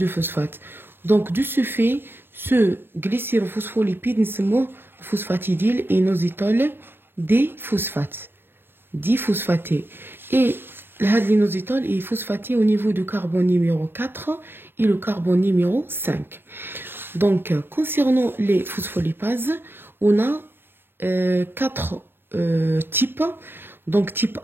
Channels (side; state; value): left; late; 0.10 ms